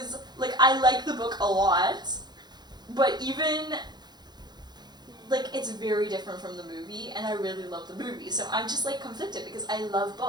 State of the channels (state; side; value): late; left; 0.21 ms